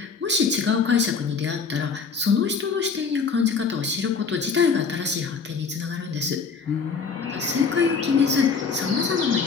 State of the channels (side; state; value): right; quieter; 5.3 dB